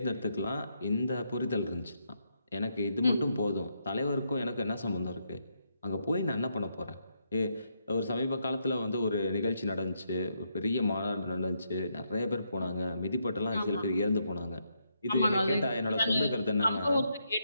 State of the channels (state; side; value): inverted; both; correlation -0.79